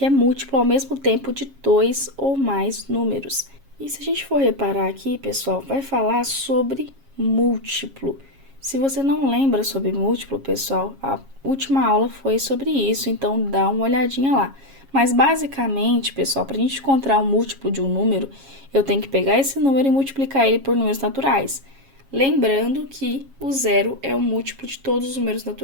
é múltiplo ao mesmo tempo de dois ou mais números. E se a gente for reparar aqui, pessoal, vai falar sobre múltiplo. Se você não lembra sobre múltiplo, pessoal, a última aula foi sobre isso, então dá uma olhadinha lá. Mas basicamente, pessoal, para a gente encontrar o múltiplo de um número, eu tenho que pegar esse número e multiplicar ele por números naturais. Lembrando que o zero é o múltiplo de todos os números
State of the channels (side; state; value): left; late; 7.3 ms